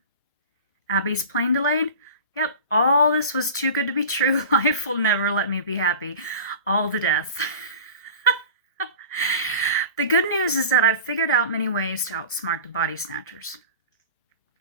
Abby's plane delayed, yep, all this was too good to be true. Life will never let me be happy. All the death. The good news is that I've figured out many ways to outsmart the body snatchers.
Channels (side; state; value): both; inverted; correlation -0.36